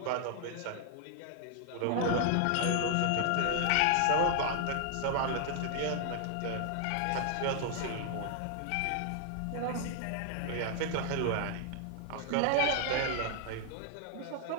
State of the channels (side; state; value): both; different; correlation 0.00